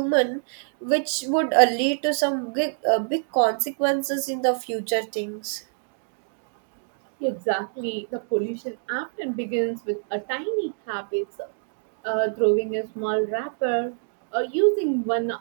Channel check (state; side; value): silent; left; digital silence